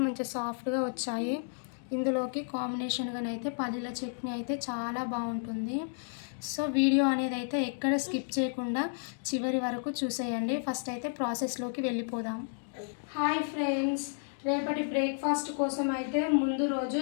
మంచిగా సాఫ్ట్గా వచ్చాయి. ఇందులోకి కాంబినేషన్గానైతే పల్లీల చట్నీ అయితే చాలా బాగుంటుంది. సో వీడియో అనేది అయితే ఎక్కడ స్కిప్ చేయకుండా చివరి వరకు చూసేయండి. ఫస్ట్ అయితే ప్రాసెస్లోకి వెళ్ళిపోదాం. హాయ్ ఫ్రెండ్స్, రేపటి బ్రేక్ఫాస్ట్ కోసం అయితే ముందు రోజు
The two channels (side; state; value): right; silent; digital silence